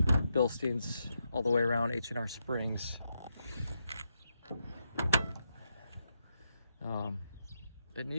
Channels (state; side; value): inverted; both; correlation -0.82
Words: Bilstein's all the way around, H&R springs. It